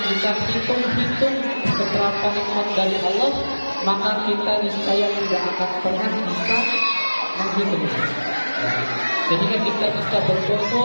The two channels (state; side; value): inverted; both; correlation -1.00